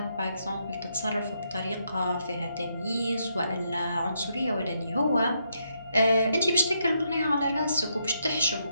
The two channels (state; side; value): inverted; both; correlation -0.78